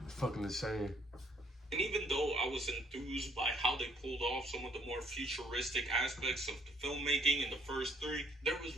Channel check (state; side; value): normal; both; correlation 0.65